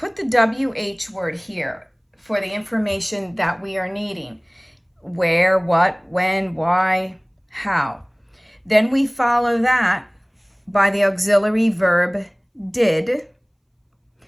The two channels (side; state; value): both; identical; correlation 1.00